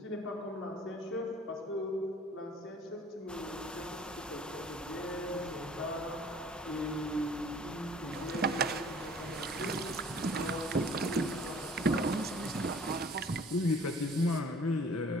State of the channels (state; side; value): normal; both; correlation 0.52